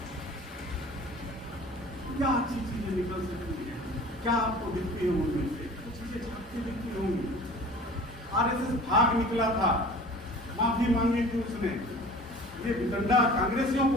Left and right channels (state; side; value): normal; both; correlation 0.44